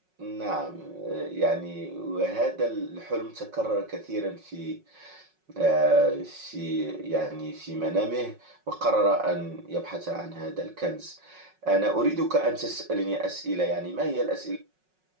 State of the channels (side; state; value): left; late; 5.4 ms